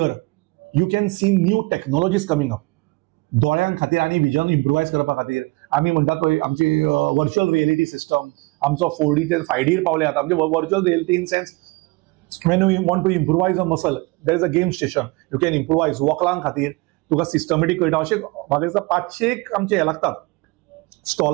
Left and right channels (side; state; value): left; quieter; 24.9 dB